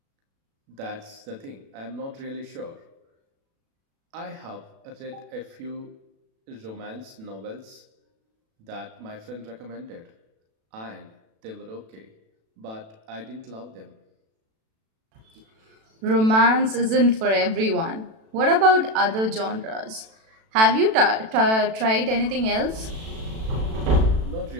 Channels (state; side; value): late; left; 36 ms